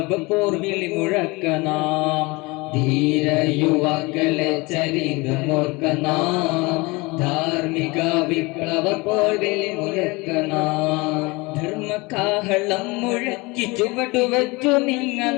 പോർവിളി മുഴക്കനാം ധീര യുവാക്കളെ ചരിതമോർക്കനാം ധാർമ്മിക വിപ്ലവ പോർവിളി മുഴക്കനാം ധർമ്മകാഹളം മുഴക്കി ചുവടുവച്ചു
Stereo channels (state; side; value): quieter; right; 24.7 dB